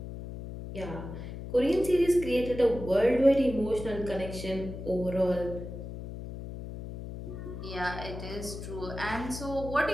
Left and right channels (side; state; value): left; noise; hum, 9 dB below the sound